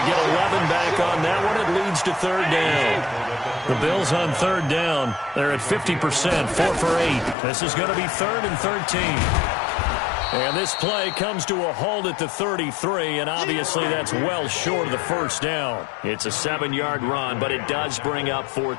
get 11 back on that one. It leads to 3rd down. The Bills on 3rd down. They're at 50%, 4 for 8. This is going to be 3rd and 13. And this play comes to a halt at the 33, and obviously that's well short of the 1st down. It's a 7-yard run, but it does bring up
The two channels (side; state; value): right; drops out; at 7.4 s